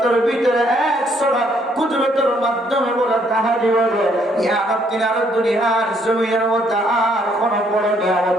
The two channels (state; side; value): normal; both; correlation 0.68